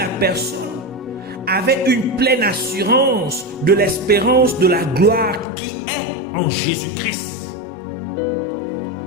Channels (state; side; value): drops out; right; at 5.5 s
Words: personne avait une pleine assurance de l'espérance de la gloire qui est en Jésus-Christ.